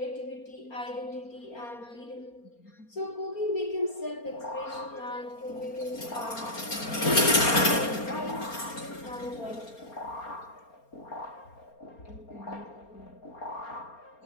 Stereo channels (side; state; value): right; late; 4.3 ms